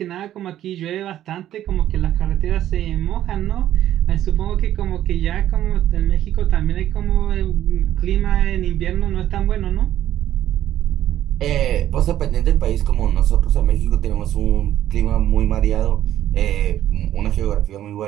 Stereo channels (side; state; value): left; quieter; 12.2 dB